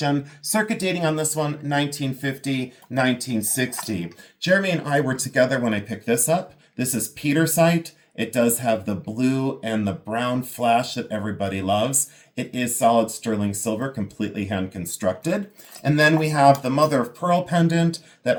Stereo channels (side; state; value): both; identical; correlation 1.00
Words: circuit dating on this one, 1950, 1960. Jeremy and I were together when I picked this up. This is petersite. It does have the blue and the brown flash that everybody loves. It is solid sterling silver, completely hand constructed. And then we have the mother of pearl pendant that